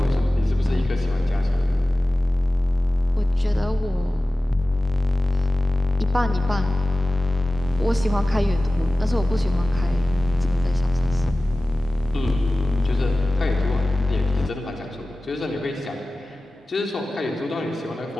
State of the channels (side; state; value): both; normal; correlation 0.96